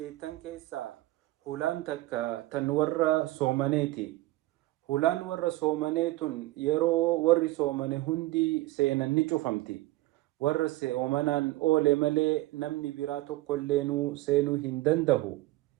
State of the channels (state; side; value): quieter; left; 18.3 dB